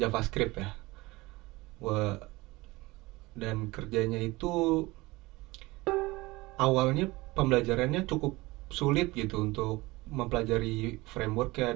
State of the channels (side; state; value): left; quieter; 21.2 dB